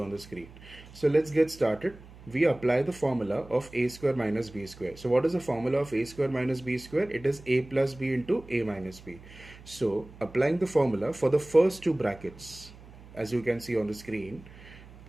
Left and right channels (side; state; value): right; noise; hum, 20 dB below the sound